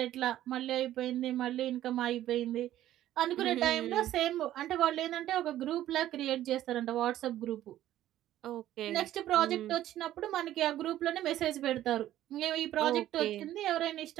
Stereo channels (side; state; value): left; quieter; 13.1 dB